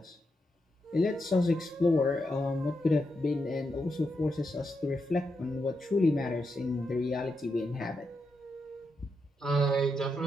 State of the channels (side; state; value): both; normal; correlation 0.84